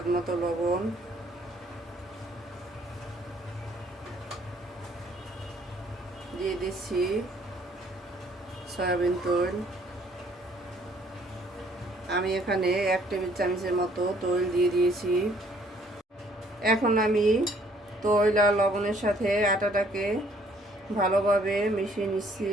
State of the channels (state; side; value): normal; both; correlation 0.62